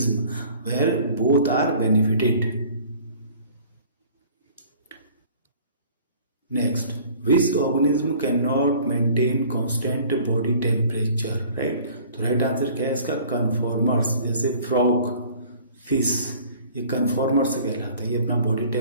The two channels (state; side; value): inverted; both; correlation -0.50